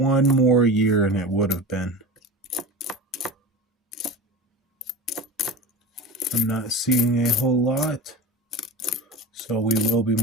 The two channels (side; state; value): both; normal; correlation 0.30